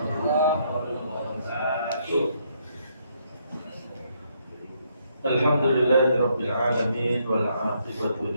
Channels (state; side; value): inverted; both; correlation -0.73